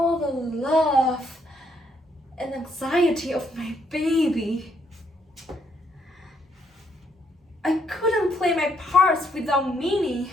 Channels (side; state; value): both; normal; correlation 0.73